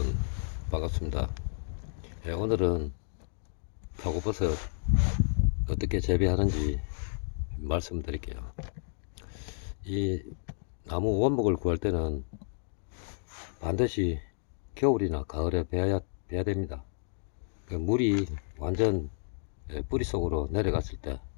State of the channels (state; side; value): silent; right; digital silence